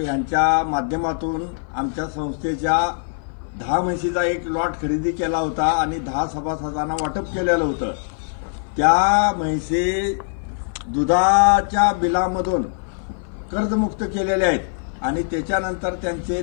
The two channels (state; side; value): silent; right; 56 dB below the other